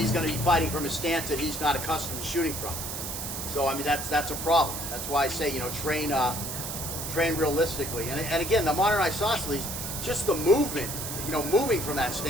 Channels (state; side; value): noise; right; hiss, 5 dB below the sound